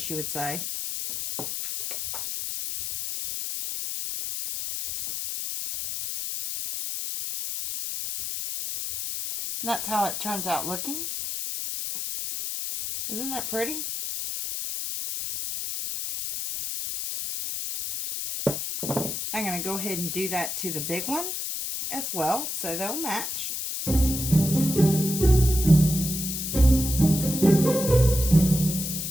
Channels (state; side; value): noise; left; hiss, 4 dB below the sound